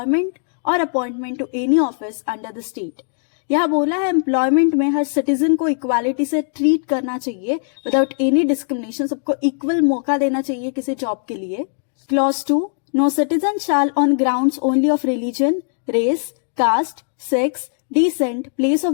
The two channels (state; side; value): silent; right; digital silence